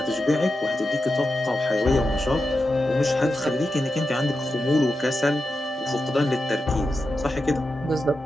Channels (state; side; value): normal; both; correlation 0.90